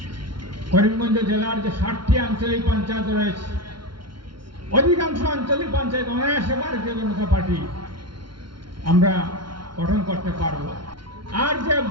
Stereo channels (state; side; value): late; left; 0.73 ms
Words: করিমগঞ্জ জেলার যে 60টি আঞ্চলিক পঞ্চায়েত রয়েছে, অধিকাংশ আঞ্চলিক পঞ্চায়েত অনায়াসে ভারতীয় জনতা পার্টি আমরা গঠন করতে পারব। আর যে